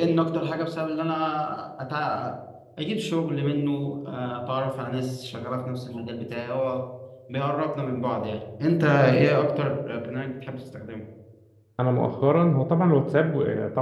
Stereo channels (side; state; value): both; identical; correlation 1.00